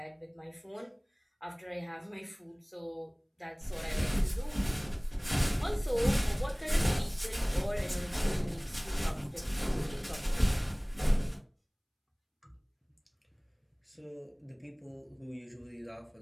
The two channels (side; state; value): both; identical; correlation 1.00